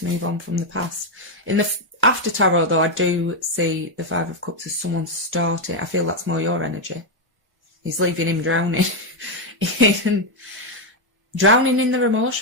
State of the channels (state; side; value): late; left; 1.1 ms